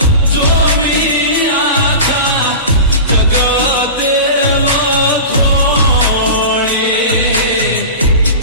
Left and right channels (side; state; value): both; inverted; correlation -0.31